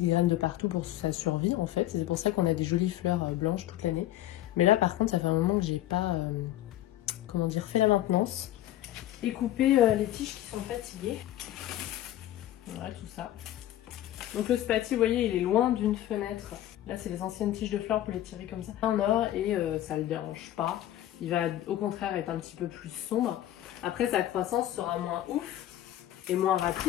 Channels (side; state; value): right; quieter; 13.5 dB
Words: graines de partout pour sa survie en fait. C'est pour ça qu'on a des jolies fleurs blanches toute l'année. Mais là par contre ça fait un moment que j'ai pas comment dire, fait la maintenance et coupé les tiges qui sont fatiguées. Voilà tout ça. Donc le spati, vous voyez, il est loin d'une fenêtre. Là c'est les anciennes tiges de fleurs pour les tirer comme ça en or et ça le dérange pas. Il va au contraire être un petit peu plus sombre. Après sa croissance sera moins ouf et moins